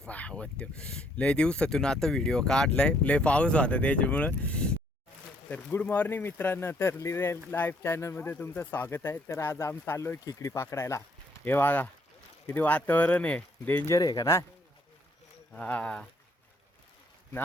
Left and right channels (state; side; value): normal; both; correlation 0.67